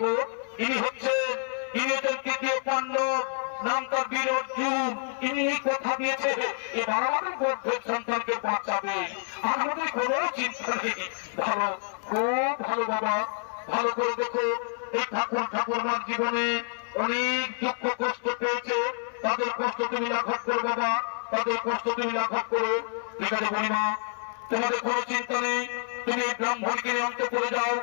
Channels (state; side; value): silent; right; 59 dB below the other